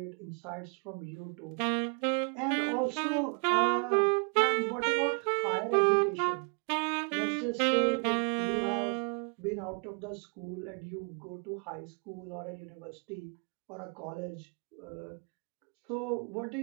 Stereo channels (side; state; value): left; quieter; 38.2 dB